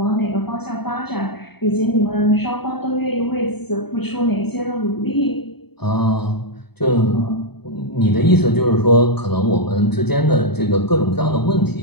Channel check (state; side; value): late; right; 0.98 ms